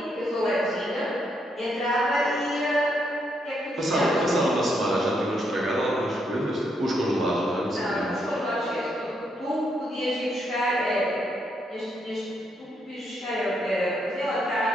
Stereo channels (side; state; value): both; normal; correlation 0.77